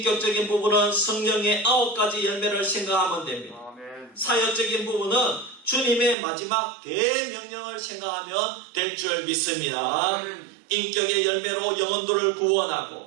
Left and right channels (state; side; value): drops out; left; at 6.2 s